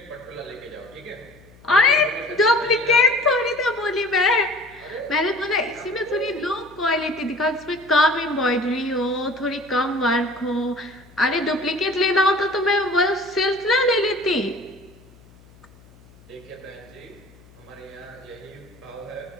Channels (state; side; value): noise; left; hum, 26 dB below the sound